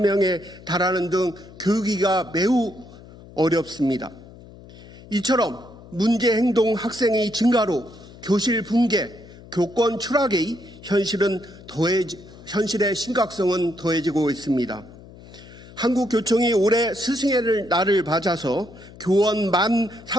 명에 달하는 등 교육이가 매우 어렵습니다. 이처럼 문제 행동 학생의 증가로 교실 붕괴, 교권 추락의 현실의 심각성은 더해지고 있습니다. 한국교총이 올해 스승의 날을 맞아서 교원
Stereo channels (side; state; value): left; noise; hum, 19 dB below the sound